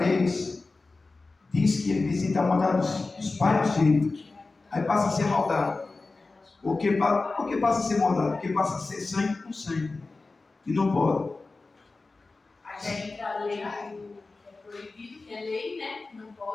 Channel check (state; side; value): quieter; right; 3.6 dB